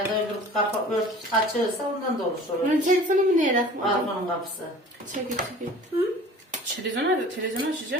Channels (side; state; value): both; normal; correlation 0.45